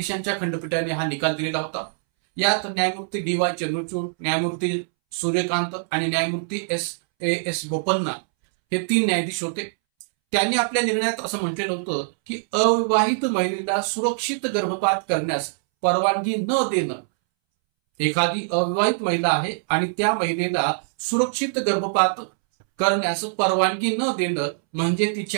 खंडपीठाने हा निकाल दिलेला होता. यात न्यायमूर्ती डी.वाय. चंद्रचूड, न्यायमूर्ती सूर्यकांत आणि न्यायमूर्ती एस बोपन्ना हे 3 न्यायाधीश होते. त्यांनी आपल्या निर्णयात असं म्हटलेलं होतं की अविवाहित महिलेला सुरक्षित गर्भपात करण्यास परवानगी न देणं, एखादी अविवाहित महिला आहे आणि त्या महिलेला सुरक्षित गर्भपात करण्यास परवानगी न देणं म्हणजे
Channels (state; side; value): silent; left; 63 dB below the other